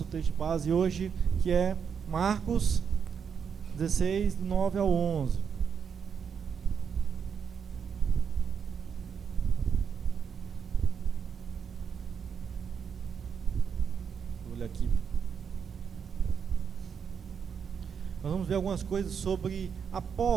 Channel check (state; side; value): quieter; left; 6.9 dB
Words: texto de base hoje, que é Marcos 16, do 9 ao 11. Vou olhar aqui. Nós vamos ver algumas coisas sobre